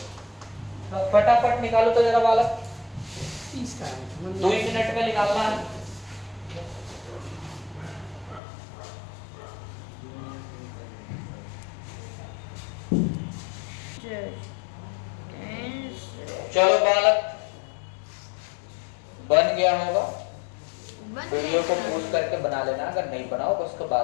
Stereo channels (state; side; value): drops out; right; at 8.4 s